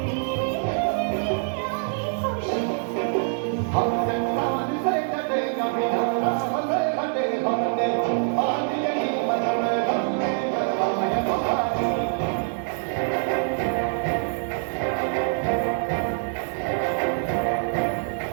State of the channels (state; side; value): silent; left; 62 dB below the other